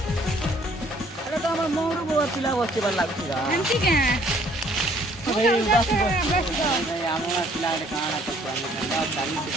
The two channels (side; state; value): both; normal; correlation 0.61